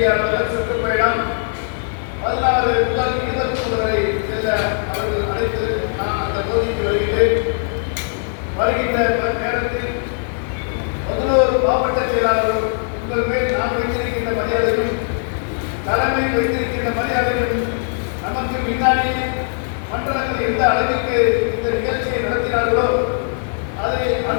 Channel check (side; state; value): right; silent; digital silence